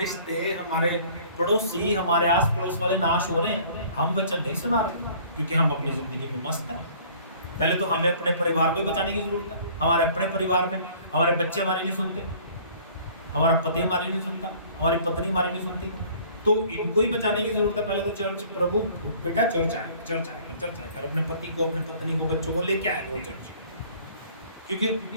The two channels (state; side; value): inverted; both; correlation -0.53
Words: हमारे पड़ोसी, हमारे आस पड़ोस वाले नाश हो रहे हैं, हम वचन नहीं सुना रहे क्योंकि हम अपनी जिंदगी में मस्त हैं। पहले तो हमें अपने परिवार को बचाने की जरूरत है। हमारे अपने परिवार में हमारे बच्चे हमारी नहीं सुनते, हमारा पति हमारी नहीं सुनता, हमारी पत्नी हमारी नहीं सुनती, तो इनको ही बचाने की जरूरत है। पहले तो चर्च, प्रभु बेटा चर्च आए, चर्च आए, अपने पति को, अपने पत्नी को, बच्चों को लेके आए वो चर्च, क्योंकि